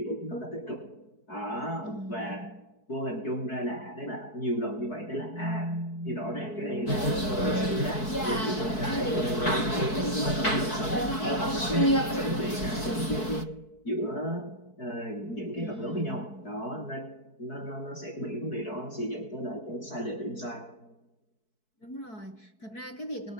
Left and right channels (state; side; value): late; right; 4.6 ms